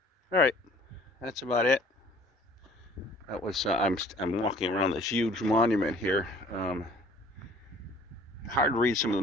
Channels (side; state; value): both; normal; correlation 0.53